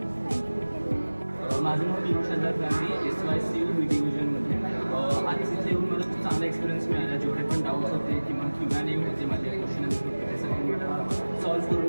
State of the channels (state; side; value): inverted; both; correlation -1.00